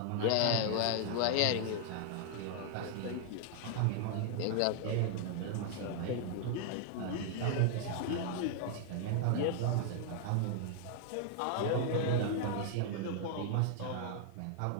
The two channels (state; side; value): different; both; correlation 0.00